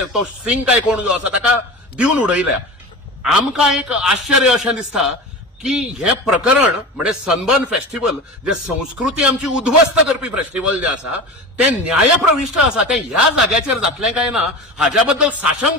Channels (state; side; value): normal; both; correlation 0.30